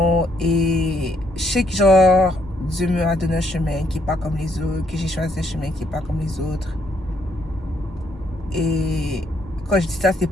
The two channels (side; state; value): both; normal; correlation 0.72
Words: Et je sais que genre Dieu m'a donné un chemin qui est pas comme les autres, que j'ai choisi un chemin qui est pas comme les autres. Et quand je dis ça, c'est